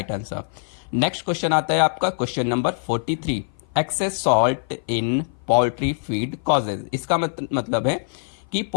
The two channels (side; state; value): right; silent; 55 dB below the other